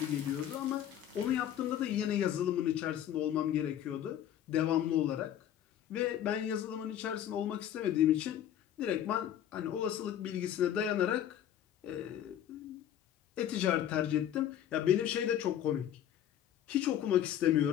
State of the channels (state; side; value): quieter; right; 10.7 dB